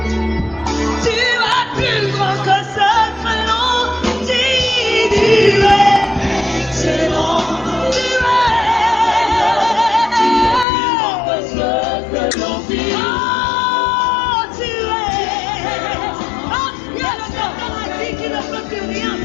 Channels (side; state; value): right; drops out; at 10.7 s